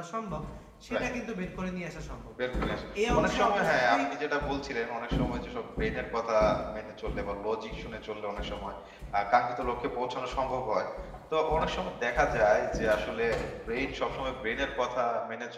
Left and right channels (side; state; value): both; identical; correlation 1.00